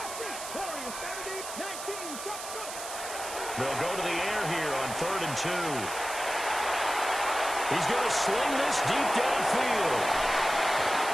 They'll go to the air here on 3rd and 2. He's going to sling this deep downfield.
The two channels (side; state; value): right; noise; hiss, 9 dB below the sound